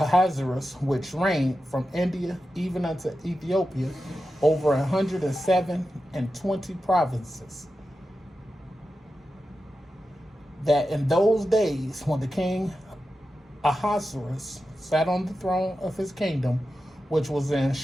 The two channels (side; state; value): both; normal; correlation 0.91